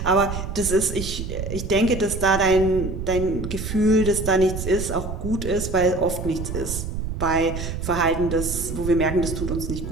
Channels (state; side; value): noise; right; rumble, 6 dB below the sound